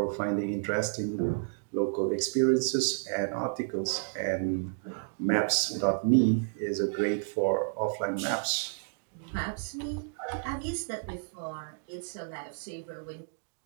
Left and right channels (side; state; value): left; silent; digital silence